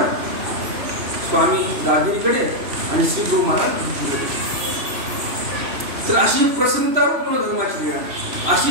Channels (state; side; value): late; left; 3.0 ms